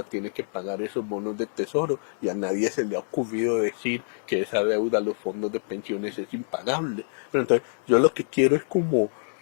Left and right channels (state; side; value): silent; right; digital silence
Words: tiene que pagar esos bonos del tesoro y a nadie se le ha ocurrido decir que esa deuda a los fondos de pensiones es impagable. Pero entonces yo lo que quiero es como